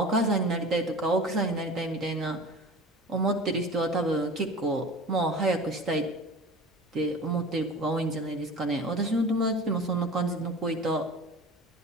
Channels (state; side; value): normal; both; correlation 0.37